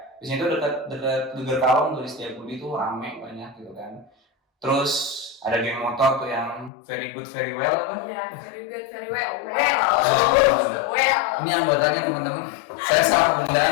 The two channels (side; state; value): right; drops out; at 6.7 s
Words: Di sini tuh dekat Geger Kalong tuh di Setiabudi tuh rame banyak gitu kan. Terus ada geng motor tuh yang very good very well apa? Iya, very good very well. Ini anggotanya teman-teman. Saya salah